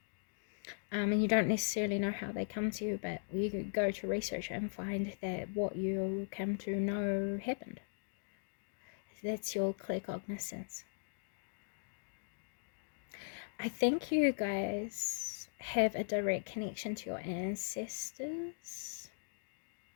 And you don't necessarily know how they come to you, but you could go to research and find that what you come to know happened. That's your clear cognizance. I think you guys have a direct connection to your ancestors.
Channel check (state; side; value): silent; right; digital silence